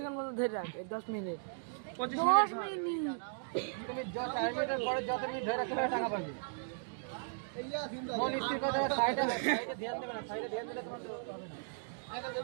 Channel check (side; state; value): left; silent; digital silence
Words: মতো ধরে রাখ, 10 মিনিট 25 মিনিট। তুমি 4 মিনিটের পরে যত মিনিট ধরে রাখতে পারবে টাকা পাবে। মন স্থির করে দেবে, সাইডে ধ্যান দেবে না, সাইডে ধ্যান দিলে তোমার হবে না।